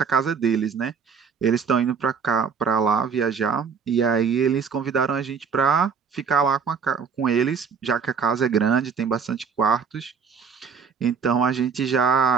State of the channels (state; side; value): quieter; left; 6.2 dB